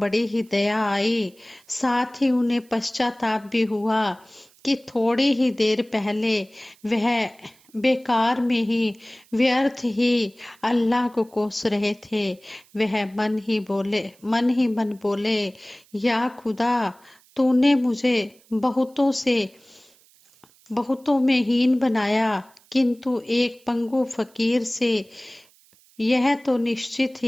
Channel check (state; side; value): noise; right; hiss, 30 dB below the sound